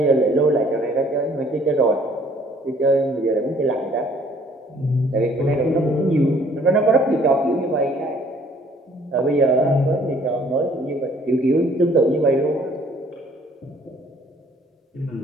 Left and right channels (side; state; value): both; normal; correlation 0.59